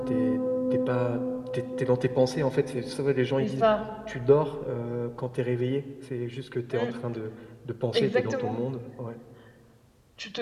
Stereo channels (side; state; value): both; identical; correlation 1.00